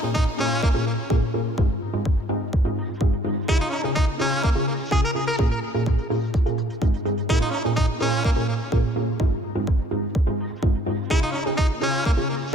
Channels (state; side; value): normal; both; correlation 0.61